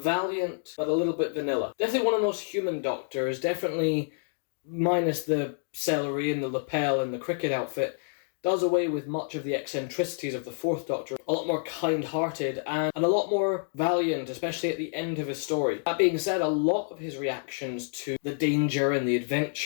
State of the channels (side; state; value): right; silent; digital silence